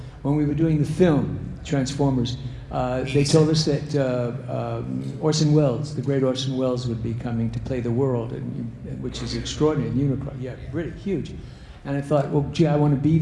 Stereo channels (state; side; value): identical; both; correlation 1.00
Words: when we were doing the film Transformers, they told us that Orson Welles, the great Orson Welles, would be coming to play the world, which is extraordinary. Unicron, really huge. And I thought, well, gee, I want to be